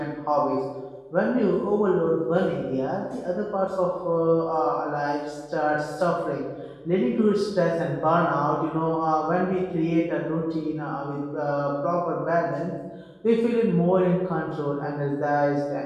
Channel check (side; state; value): both; identical; correlation 1.00